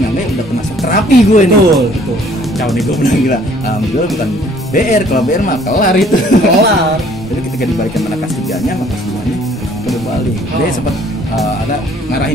udah kena terapi gue nih. Betul. Kacau nih gue bilang gila. Alhamdulillah bukan BR, kalau BR mah kelar itu. Kelar. Jadi ketika dibalikin mana kelas 3-nya sama kelas 2-nya udah balik. Dia sempat ada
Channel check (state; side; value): normal; both; correlation 0.58